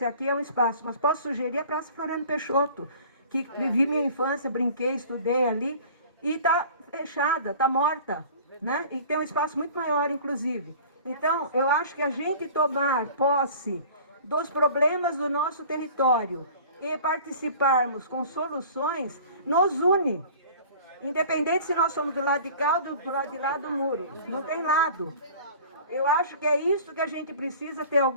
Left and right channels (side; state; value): both; inverted; correlation -0.44